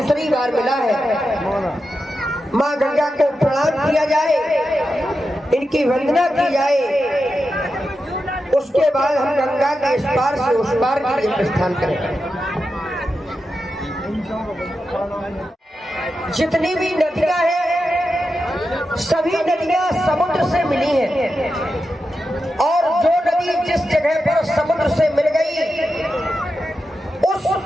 बार मिला है। माँ गंगा को प्रणाम किया जाए, इनकी वंदना की जाए, उसके बाद हम गंगा के इस पार से उस पार के लिए प्रस्थान करें। जितनी भी नदियां हैं, सभी नदियां समुद्र से मिली हैं और जो नदी जिस जगह पर समुद्र से मिल गई, उस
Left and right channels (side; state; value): both; normal; correlation 0.89